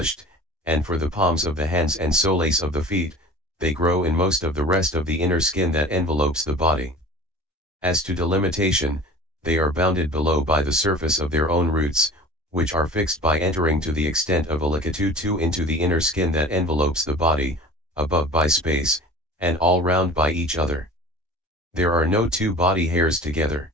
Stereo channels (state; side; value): normal; both; correlation 0.41